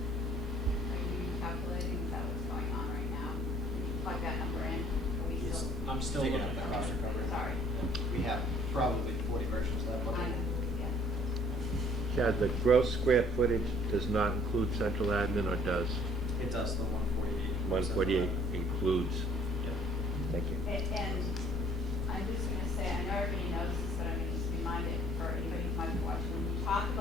Are you calculating, is that what's going on right now? Can you plug that number in? Are we still? I'm still Taking looking up at the cost it. recovery. Sorry. We have probably 40 versions of that book. I know, yeah. Chad, the gross square footage does not include central admin, or does? It does, the 148. 148 includes. Yeah. Thank you. And I'm just gonna say, I know everybody knows this, but I'm gonna just remind it for anybody who might be watching. When you talk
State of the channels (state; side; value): normal; both; correlation 0.59